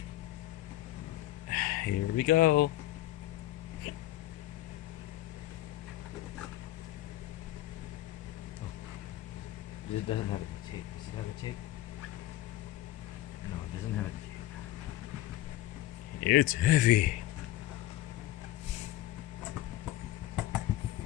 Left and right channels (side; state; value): right; quieter; 15.2 dB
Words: Here we go. Oh, it doesn't have any tape. Does it have a tape? No, it doesn't have a tape. It's heavy.